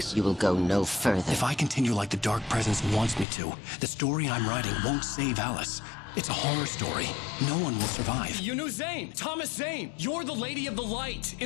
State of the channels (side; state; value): right; drops out; at 3.2 s